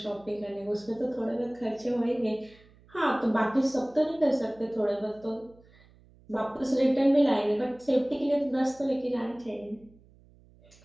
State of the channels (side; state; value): right; noise; hum, 27 dB below the sound